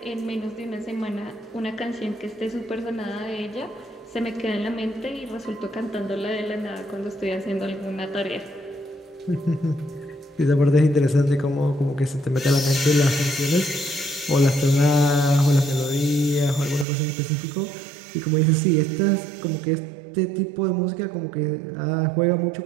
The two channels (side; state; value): left; drops out; at 16.9 s